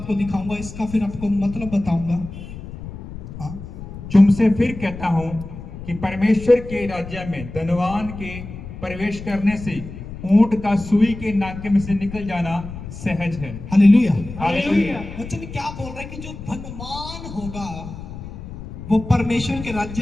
दिखाऊंगा, इसका फिर आपको मतलब बताऊंगा। हाँ, तुमसे फिर कहता हूं कि परमेश्वर के राज्य में धनवान के प्रवेश करने से ऊंट का सुई के नाके में से निकल जाना सहज है। हालेलुया। हालेलुया। वचन क्या बोल रहा है कि जो धनवान होगा वो परमेश्वर के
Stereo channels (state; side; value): noise; left; rumble, 12 dB below the sound